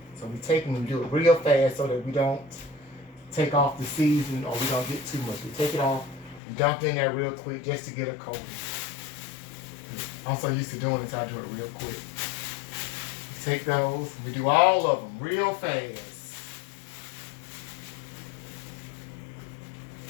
So we take it and we do it real fast so that we don't take off the seasoning or we don't get too much. We take it off and dump it in there real quick just to get a coating. I'm so used to doing this, I do it real quick. We take those and we do all of them real fast.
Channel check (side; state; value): right; drops out; at 6.4 s